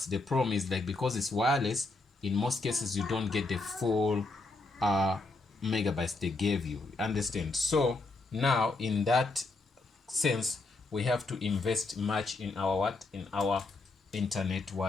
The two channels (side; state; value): right; quieter; 3.3 dB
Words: the problem is, like, because it's wireless, in most cases you don't get the full megabytes they gave you. Understand? So now in that sense, we have to invest much in our internet,